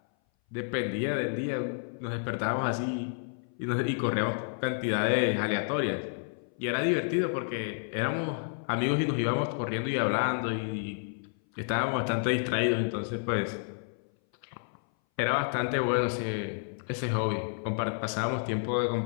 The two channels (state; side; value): silent; right; 58 dB below the other